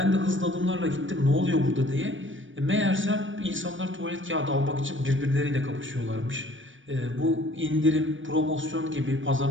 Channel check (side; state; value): left; late; 0.56 ms